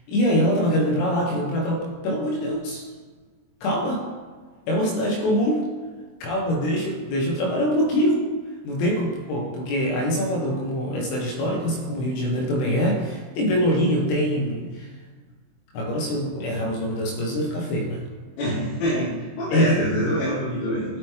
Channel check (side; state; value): right; late; 23 ms